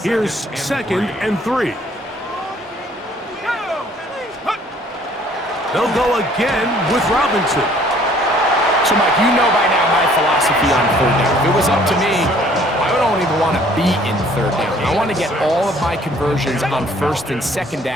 here's second and 3. They'll go again with Robinson. So, Mike, you know by now my philosophy on third down. If it was up to me, I don't even want to be in third down. I want to get all of my conversions on first and second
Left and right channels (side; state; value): both; normal; correlation 0.58